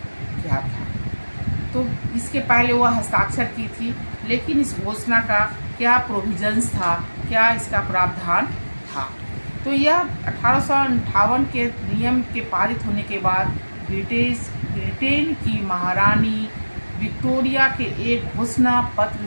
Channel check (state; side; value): inverted; both; correlation -1.00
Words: क्या था। तो इसके पहले वह हस्ताक्षर की थी, लेकिन इस घोषणा का क्या प्रोविजंस था, क्या इसका प्रावधान था। तो यह 1858 के नियम के पारित होने के बाद ब्रिटेन की महारानी विक्टोरिया के एक घोषणा